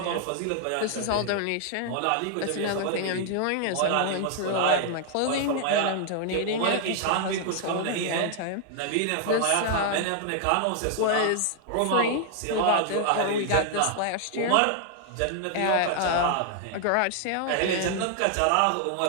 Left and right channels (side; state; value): both; different; correlation 0.00